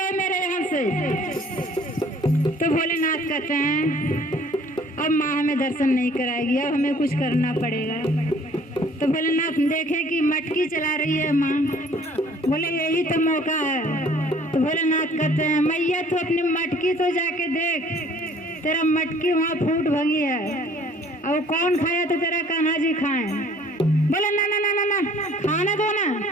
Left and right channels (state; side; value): normal; both; correlation 0.56